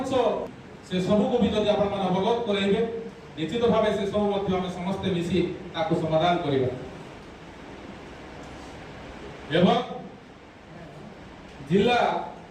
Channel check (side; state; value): both; identical; correlation 1.00